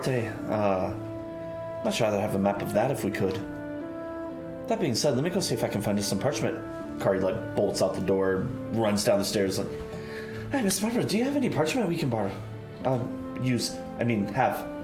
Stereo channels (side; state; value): both; identical; correlation 1.00